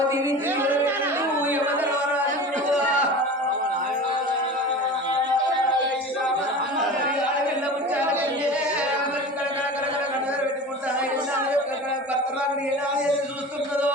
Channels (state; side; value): normal; both; correlation 0.34